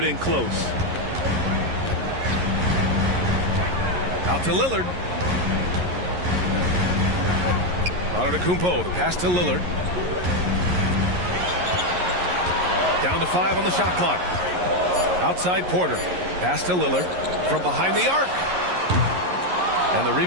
in close. Out to Lillard. Antetokounmpo, the pass to Lillard. Down to 5 on the shot clock. Outside Porter. Pass to Lillard from behind the arc. And the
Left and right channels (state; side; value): late; left; 11 ms